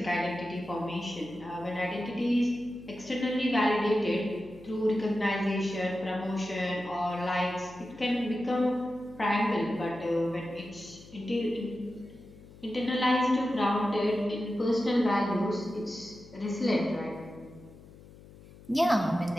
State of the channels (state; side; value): noise; left; hum, 20 dB below the sound